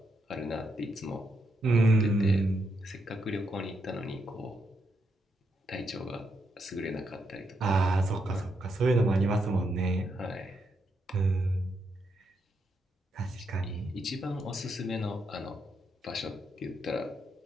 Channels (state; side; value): normal; both; correlation 0.80